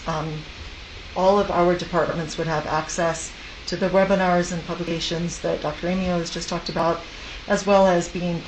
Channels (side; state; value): both; identical; correlation 1.00